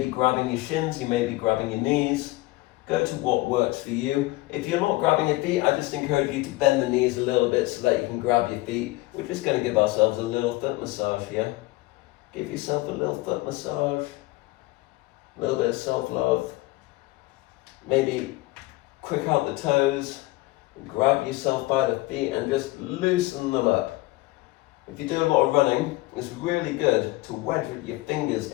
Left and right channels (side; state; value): right; quieter; 19.8 dB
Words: grabbing your shins, you may be grabbing your knees. Go to what works for you. If you're not grabbing your feet, I just encourage you to bend the knees a little bit so that you can grab your feet. We're just going to give ourselves a little foot massage here. Give yourself a little foot massage. A little bit of self-love. Maybe quick out the toes. Grab yourself by the feet and just loosen them up. If you do a lot of running, it's really good to wedge your fingers